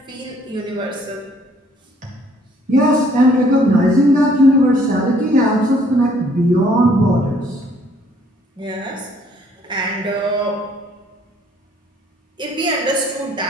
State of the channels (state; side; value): normal; both; correlation 0.62